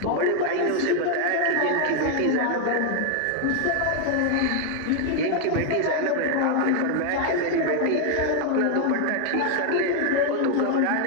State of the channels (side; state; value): both; different; correlation 0.00